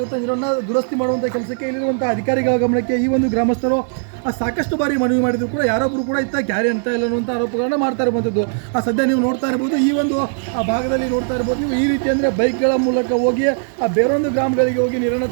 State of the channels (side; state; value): left; silent; 58 dB below the other